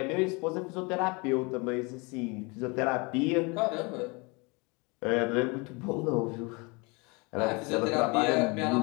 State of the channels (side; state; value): right; quieter; 28.5 dB